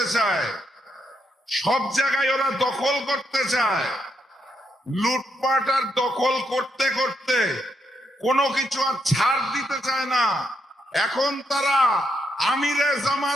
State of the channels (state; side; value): normal; both; correlation 0.78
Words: চায়, সব জায়গায় ওরা দখল করতে চায়। লুটপাট আর দখল করতে করতে কোনো কিছু আর ছাড় দিতে চায় না। এখন তারা আমিরে